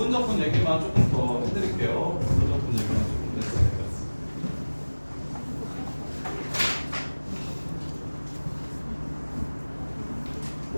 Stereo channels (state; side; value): inverted; both; correlation -1.00